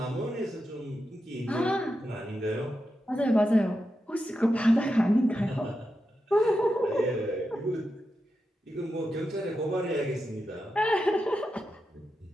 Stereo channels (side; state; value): both; normal; correlation 0.88